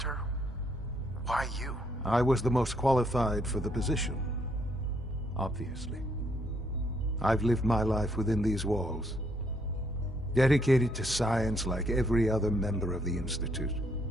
Why you? I was the most qualified for the position. Obviously. I've lived my life within these walls. Dedicated to science like every other member of the Institute.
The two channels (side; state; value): both; normal; correlation 0.71